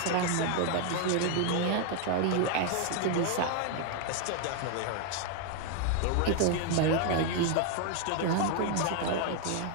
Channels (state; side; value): different; both; correlation 0.00